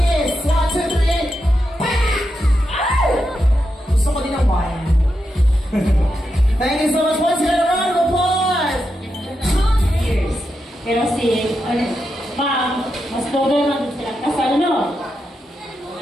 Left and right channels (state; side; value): normal; both; correlation 0.86